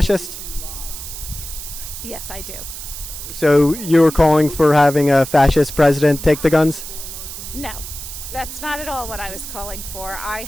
Yes, I do. So you were calling for having a fascist president take the guns? No, that's not at all what I was calling for. I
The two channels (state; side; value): noise; right; hiss, 10 dB below the sound